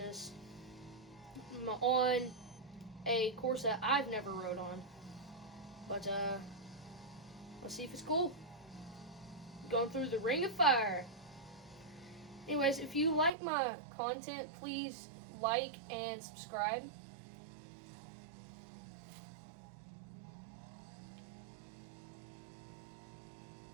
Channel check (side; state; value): left; drops out; at 13.3 s